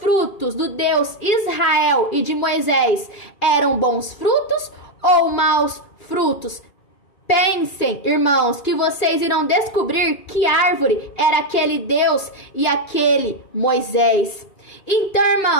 do Deus Israel e de Moisés eram bons frutos ou maus frutos? Pensem, irmãos, que vocês irão descobrir que árvore era aquele Deus e aquele Moisés. Então,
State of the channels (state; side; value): late; right; 2.4 ms